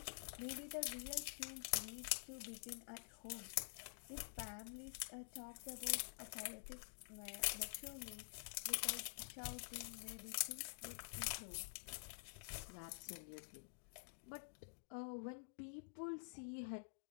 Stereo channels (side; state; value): right; silent; digital silence